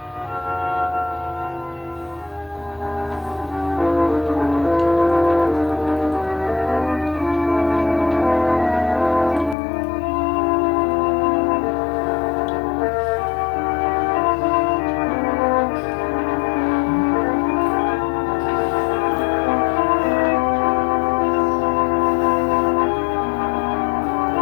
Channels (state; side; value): drops out; right; at 9.6 s